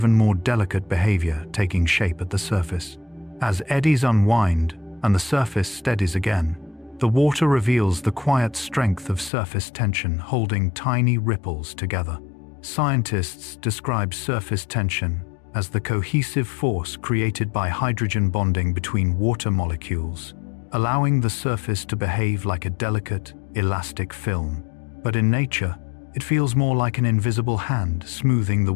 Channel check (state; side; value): drops out; right; at 9.3 s